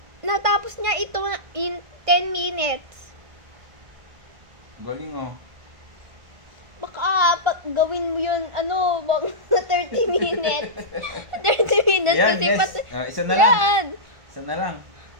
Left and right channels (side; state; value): left; late; 1.5 ms